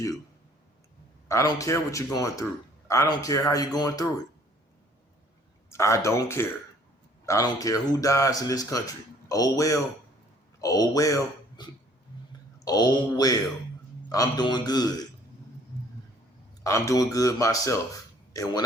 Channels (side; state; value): both; normal; correlation 0.57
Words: I don't care what you're going through. I don't care how you're going through it. I don't care. I don't care who dies in this country. Oh well. Oh well. Oh well. I'm doing good. I'm doing good myself. And when